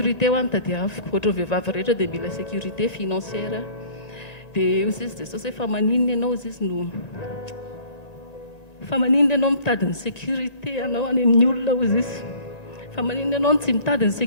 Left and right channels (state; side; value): late; right; 1.5 ms